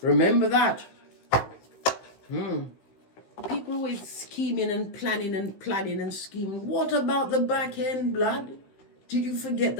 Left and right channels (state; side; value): late; right; 16 ms